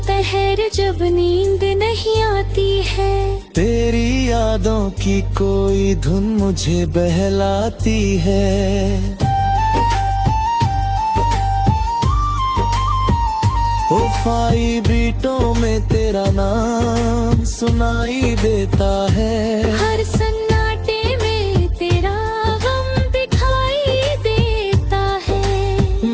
पहर जब नींद नहीं आती है, तेरी यादों की कोई धुन मुझे बहलाती है। उफाई बीटों में तेरा नाम सुनाई देता है। हर सन्नाटे में तेरा गम दिखाई देता है।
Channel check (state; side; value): identical; both; correlation 1.00